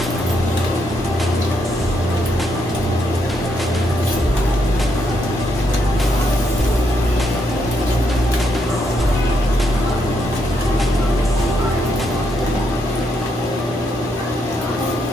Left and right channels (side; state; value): both; normal; correlation 0.77